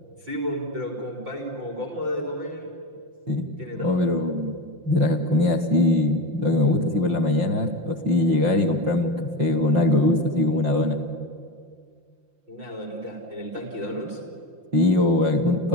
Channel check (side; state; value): left; late; 5.7 ms